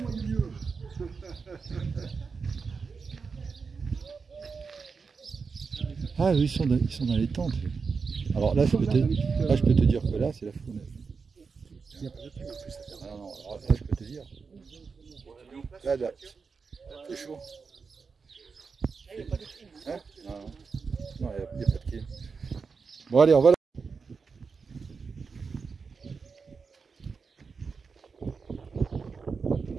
aillent mieux. Ah oui, ils sont dans les tentes. Alors là, je peux te dire que là, c'est la fournaise. Ah non, alors là, je peux te dire. Là, c'est chaud. Il n'y a pas de clim. Hein? Non, il n'y a pas de clim. Bon, allez, on va là.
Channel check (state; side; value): quieter; left; 5.1 dB